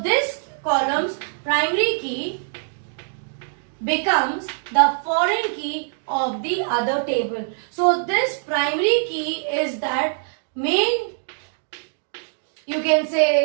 this column's primary key becomes the foreign key of the other table. So this primary key is that main, you can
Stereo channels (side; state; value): left; silent; digital silence